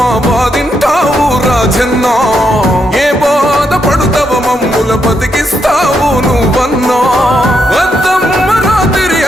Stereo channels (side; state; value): both; normal; correlation 0.80